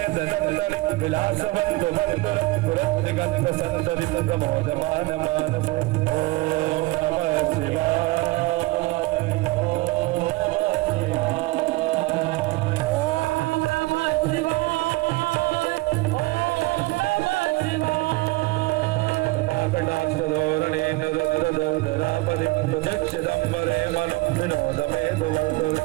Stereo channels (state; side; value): quieter; left; 22.2 dB